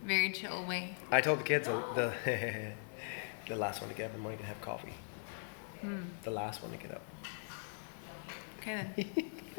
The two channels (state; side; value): silent; right; 51 dB below the other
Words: very chill way. I told the kids the the last one to get up in the morning to have coffee. The last one to get up. Okay